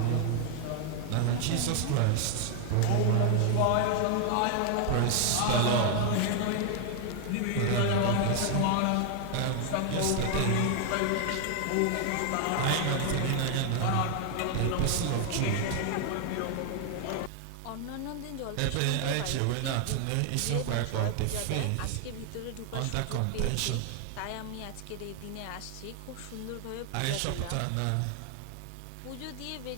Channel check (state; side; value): different; both; correlation 0.00